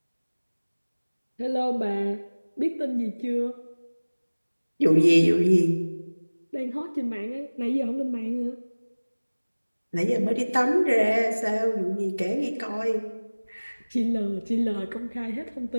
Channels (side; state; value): both; inverted; correlation -1.00